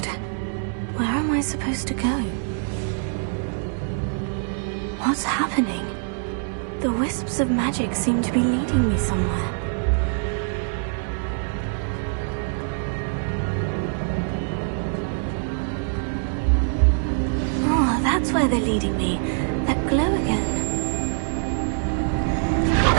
Where am I supposed to go? What's happening? The wisps of magic seem to be leading me somewhere. Oh, that's where they're leading me. That glow again.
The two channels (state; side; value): silent; left; 63 dB below the other